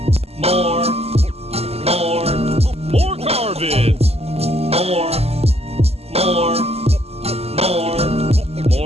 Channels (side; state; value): left; late; 0.29 ms